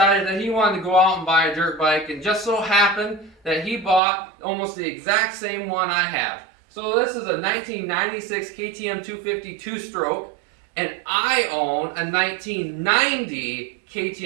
that he wanted to go out and buy a dirt bike, and just so happened that he bought almost the exact same one I have. So this is a 1996 KTM 250 two-stroke, and I own a 1990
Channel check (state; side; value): drops out; left; at 4.0 s